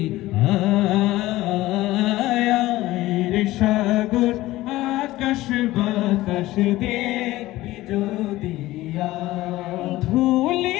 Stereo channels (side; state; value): right; quieter; 17.2 dB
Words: আয়। রে সাগর আকাশ বাতাস দেখবি যদি আয়।